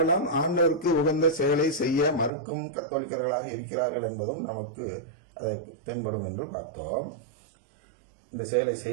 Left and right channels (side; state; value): left; drops out; at 2.3 s